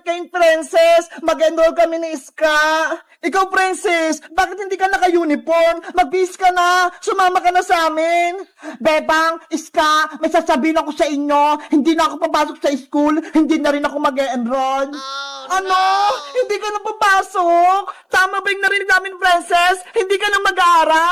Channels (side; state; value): both; identical; correlation 1.00